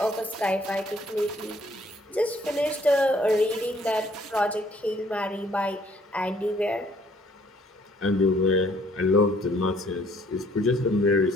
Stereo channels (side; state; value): both; normal; correlation 0.62